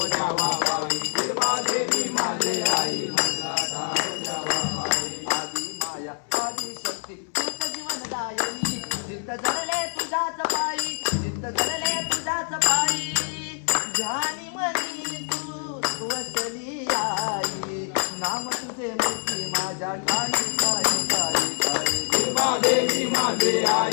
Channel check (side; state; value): right; silent; 61 dB below the other